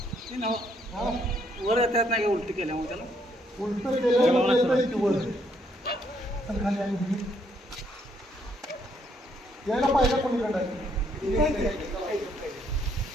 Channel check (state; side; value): normal; both; correlation 0.71